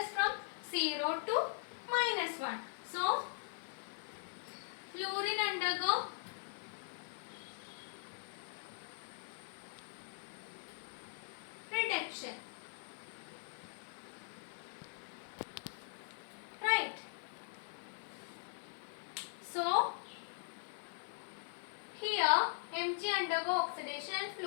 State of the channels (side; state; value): right; silent; digital silence